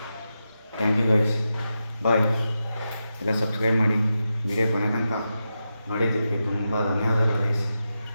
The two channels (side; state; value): both; inverted; correlation -0.89